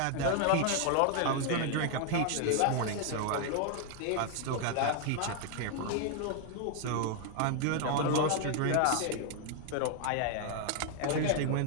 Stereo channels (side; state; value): both; different; correlation 0.00